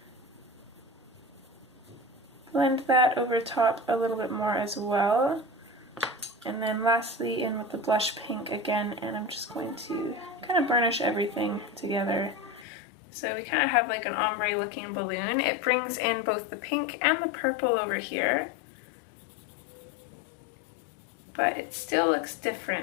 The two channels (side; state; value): right; drops out; at 12.7 s